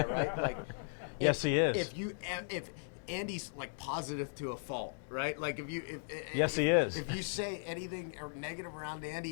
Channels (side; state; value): right; silent; digital silence